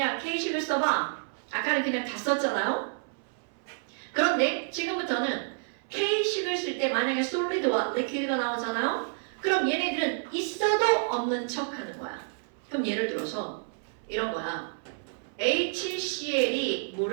K식을 써봐. 아까는 그냥 다 썼잖아요. 그런데 지금부터는 K식을 쓸 때 만약에 솔리드와 리퀴드가 나오잖아요. 그럼 얘네들은 있어도 없는 척 하는 거야. 그럼 예를 들어서 이런 거야. HCl이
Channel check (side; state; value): left; silent; 58 dB below the other